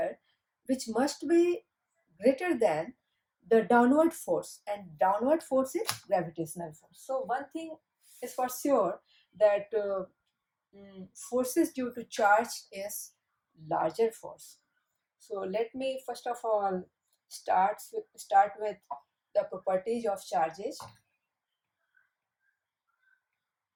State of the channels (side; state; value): both; identical; correlation 1.00